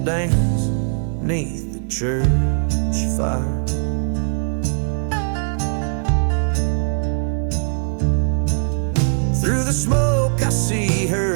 dance beneath the church fire. Through the smoke I see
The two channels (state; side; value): silent; left; 66 dB below the other